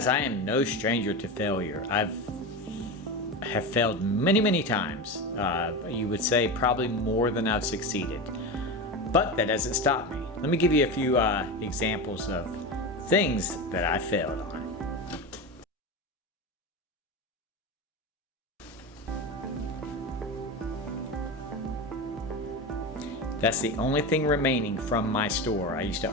I am no stranger to failure. I have failed many times. You would say probably more than I've succeeded, but that doesn't stop me. Let me give you a few examples of things that I failed on. That's the only thing remaining from my store. I used to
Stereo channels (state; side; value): normal; both; correlation 0.21